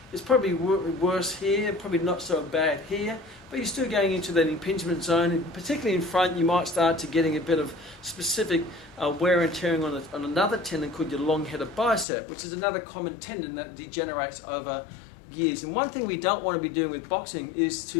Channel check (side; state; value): right; drops out; at 12.1 s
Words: It's probably worse here, probably not so bad here, but you're still going into that impingement zone. And particularly in front, you might start to getting a bit of specific wear and tearing on another tendon called your long-headed bicep, which is another common tendon that degenerates over years. And one thing we don't want to be doing with boxing is